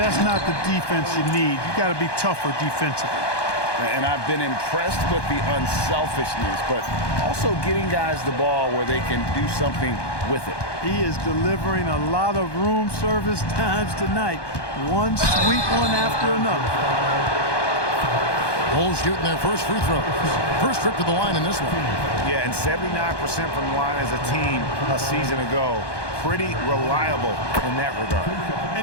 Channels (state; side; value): late; right; 1.2 ms